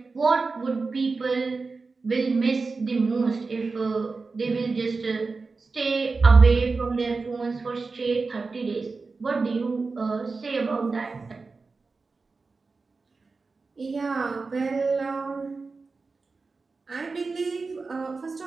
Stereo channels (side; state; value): left; quieter; 4.1 dB